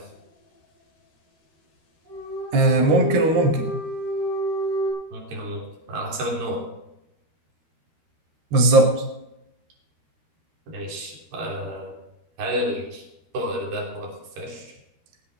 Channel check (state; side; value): late; left; 13 ms